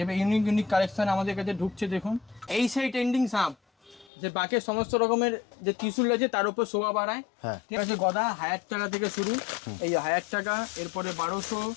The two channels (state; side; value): drops out; right; at 4.1 s